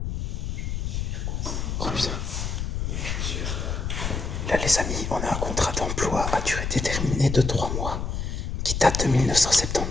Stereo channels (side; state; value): left; noise; rumble, 2 dB below the sound